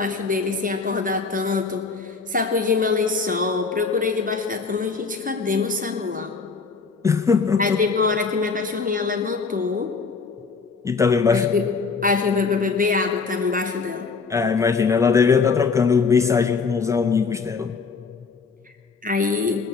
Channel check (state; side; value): quieter; right; 4.8 dB